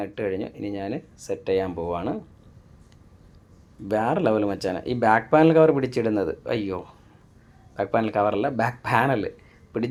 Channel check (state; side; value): identical; both; correlation 1.00